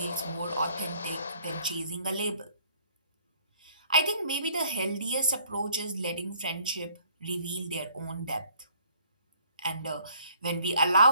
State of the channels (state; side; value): inverted; both; correlation -0.61